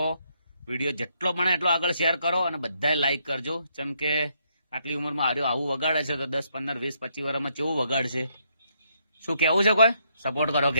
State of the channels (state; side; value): inverted; both; correlation -0.74